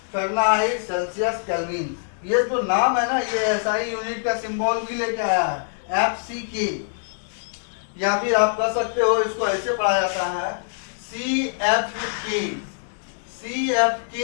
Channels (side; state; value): right; silent; digital silence